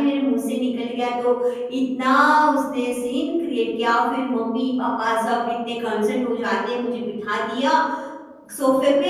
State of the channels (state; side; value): identical; both; correlation 1.00